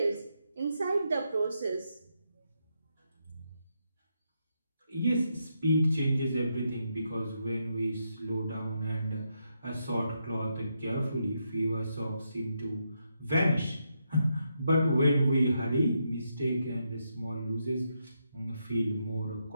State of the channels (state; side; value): inverted; both; correlation -0.81